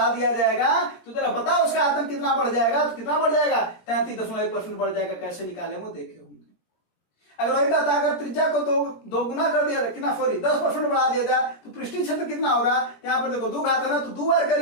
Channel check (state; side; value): late; right; 17 ms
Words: दिया जाएगा तो तेरा पता उसका आयतन कितना बढ़ जाएगा, तो कितना बढ़ जाएगा 33.1% बढ़ जाएगा। कैसे निकाले वो देखे होंगे। अगर वही कहता अगर त्रिज्या को दो गुना कर दिया कितना 10% बढ़ा दिया जाए तो पृष्ठीय क्षेत्र कितना होगा। यहाँ पर देखो 2 घात है ना, तो 2 बार